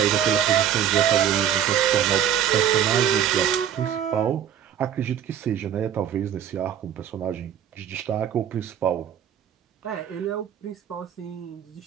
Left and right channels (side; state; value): left; quieter; 9.6 dB